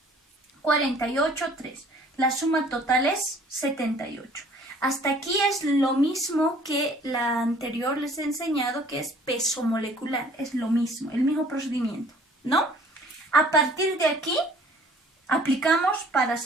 48, 3. La suma total es 78. Hasta aquí es lo mismo que la anterior les he enseñado, que es peso molecular. Es lo mismo, el mismo procedimiento, ¿no? A partir de aquí, aplicamos para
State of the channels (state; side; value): normal; both; correlation 0.54